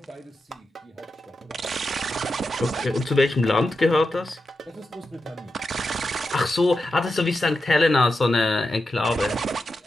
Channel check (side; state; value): both; normal; correlation 0.89